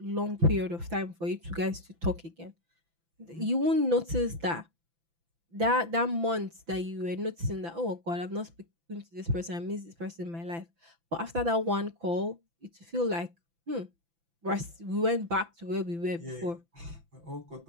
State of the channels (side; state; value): left; late; 5.9 ms